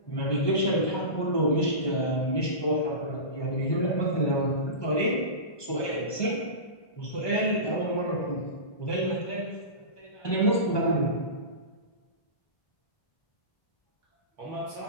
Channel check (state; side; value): late; right; 1.2 ms